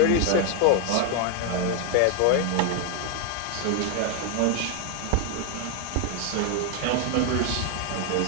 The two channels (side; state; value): both; different; correlation 0.01